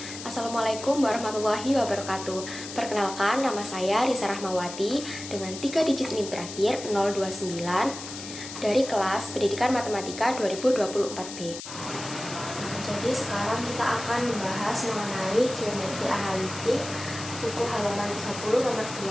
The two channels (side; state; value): left; noise; hiss, 10 dB below the sound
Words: Assalamualaikum warahmatullahi wabarakatuh. Perkenalkan, nama saya Risa Rahmawati dengan 3 digit NIM terakhir 029 dari kelas Pendidikan Matematika 2024B. Jadi sekarang kita akan membahas mengenai geometri analitik buku halaman 30 nomor